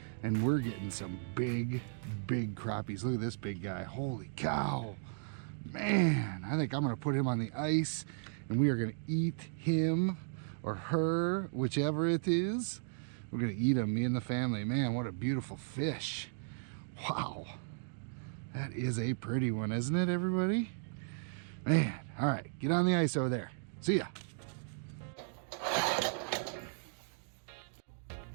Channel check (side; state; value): left; silent; digital silence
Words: and we're getting some big crappies. Look at this big guy. Holy cow. Man, I think I'm gonna put him on the ice and we are gonna eat him or her, whichever it is. We're gonna eat him, me and the family. Man, what a beautiful fish. Wow, that is a pretty one, isn't it, everybody? Man, all right, get on the ice over there. See ya.